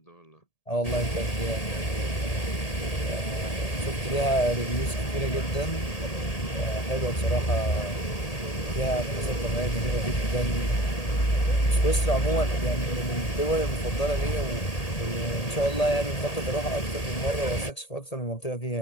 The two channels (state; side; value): late; right; 1.8 ms